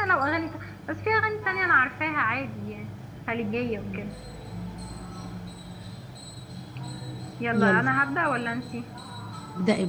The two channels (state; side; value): identical; both; correlation 1.00